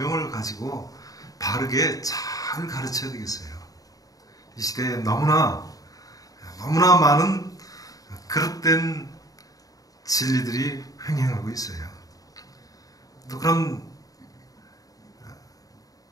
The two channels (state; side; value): late; right; 0.18 ms